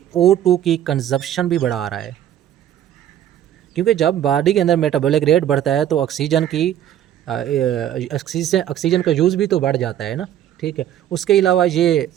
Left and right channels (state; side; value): quieter; left; 11.1 dB